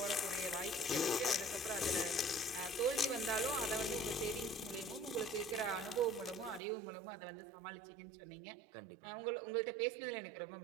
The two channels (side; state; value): left; drops out; at 6.6 s